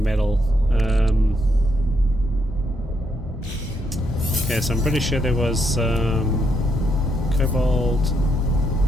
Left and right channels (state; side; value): normal; both; correlation 0.77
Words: Okay, so I'm pretty sure there was cobalt,